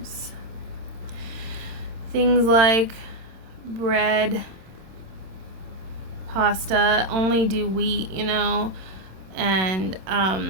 Things like bread, pasta, only do wheat, and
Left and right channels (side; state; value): left; late; 26 ms